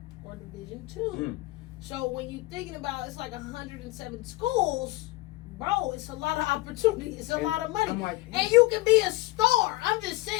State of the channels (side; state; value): right; quieter; 19.7 dB